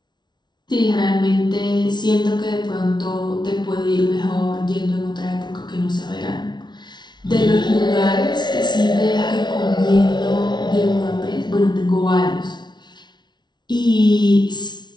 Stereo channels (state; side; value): late; right; 0.21 ms